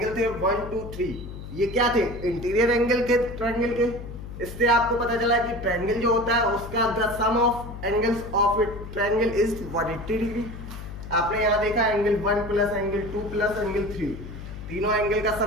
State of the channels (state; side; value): noise; left; hum, 11 dB below the sound